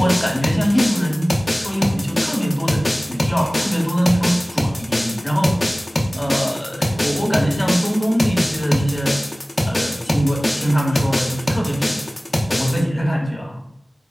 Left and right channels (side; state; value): both; normal; correlation 0.98